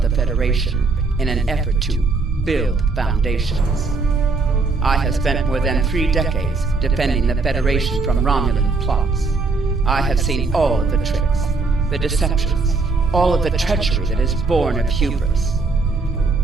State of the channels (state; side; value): quieter; left; 4.0 dB